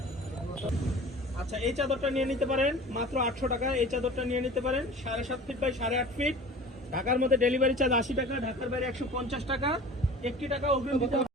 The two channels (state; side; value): normal; both; correlation 0.40